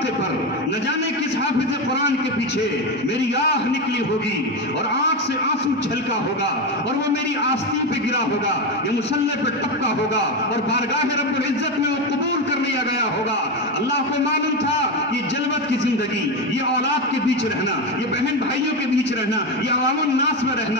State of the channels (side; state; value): both; normal; correlation 0.14